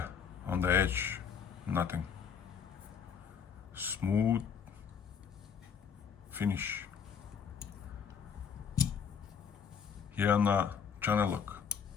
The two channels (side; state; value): right; quieter; 7.0 dB